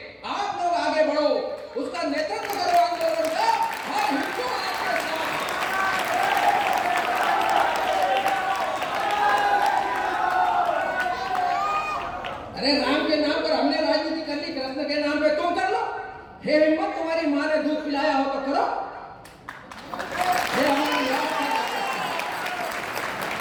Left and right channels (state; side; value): identical; both; correlation 1.00